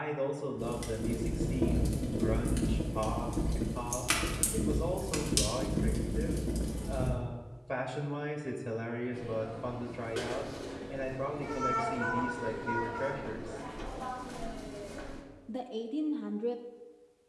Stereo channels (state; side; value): identical; both; correlation 1.00